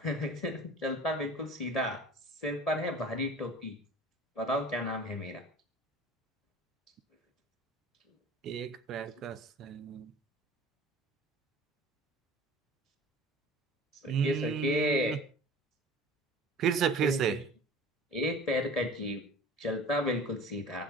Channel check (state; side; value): normal; both; correlation 0.42